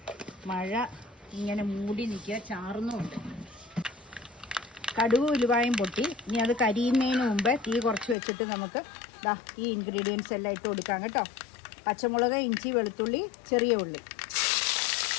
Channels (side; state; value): right; drops out; at 8.2 s